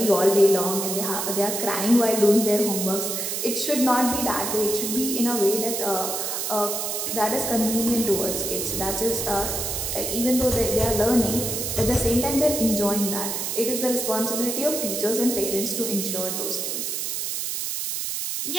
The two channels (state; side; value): noise; right; hiss, 2 dB below the sound